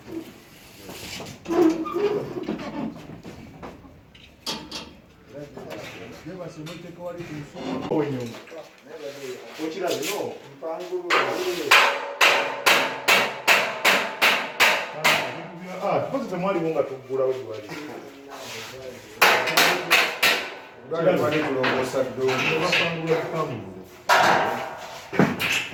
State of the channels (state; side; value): identical; both; correlation 1.00